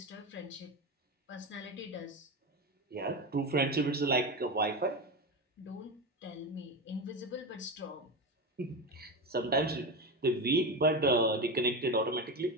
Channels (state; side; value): normal; both; correlation 0.19